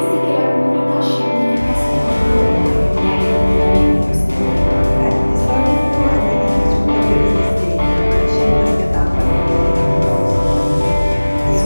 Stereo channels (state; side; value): inverted; both; correlation -1.00